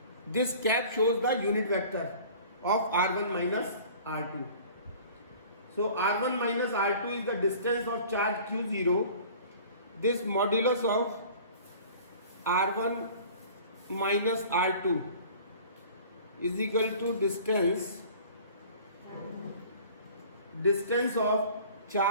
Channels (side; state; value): both; inverted; correlation -0.46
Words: This cap shows the unit vector of r1 minus r2. So r1 minus r2 is the distance of charge q0. This modulus of r1 minus r2 is equal to distance of